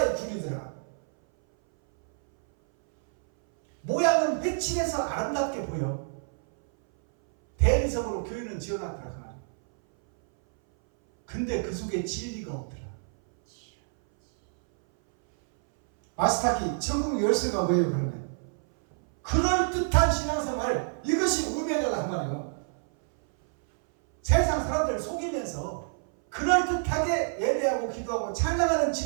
굴이 들어가. 모양은 회칠해서 아름답게 보여. 대리석으로 교회는 지어놨더라 그 말이야. 근데 그 속에 진리가 없더라. 아스타키 천국 열쇠가 뭐예요 그러면? 그럴듯한 신앙생활, 이것이 우매다가 그 말이에요. 세상 사람들 속이면서 그럴듯하게 예배하고 기도하고 찬양하는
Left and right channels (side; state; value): left; silent; 59 dB below the other